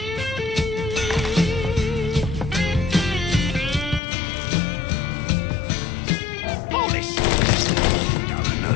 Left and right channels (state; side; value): drops out; right; at 4.0 s